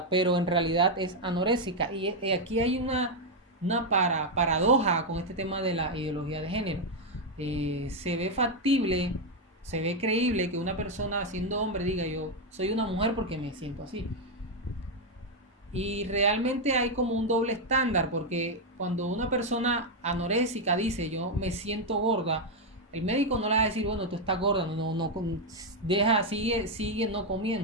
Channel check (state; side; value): normal; both; correlation 0.02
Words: pero en realidad es anoréxica. Y aquí hay una paradoja con este tema de la ideología de género. Se ve factible, se ve creíble que una persona siendo hombre diga yo soy una mujer porque me siento así. Y realmente hay como un doble estándar, porque cuando una persona anoréxica dice yo me siento gorda, el médico no le va a decir bueno, tú estás gorda, no deja, sigue no